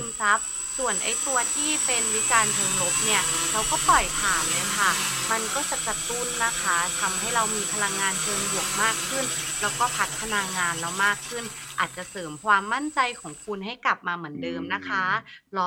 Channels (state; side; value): identical; both; correlation 1.00